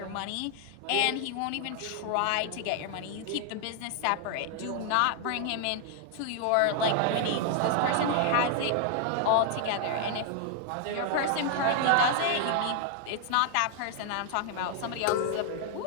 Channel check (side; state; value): both; different; correlation 0.00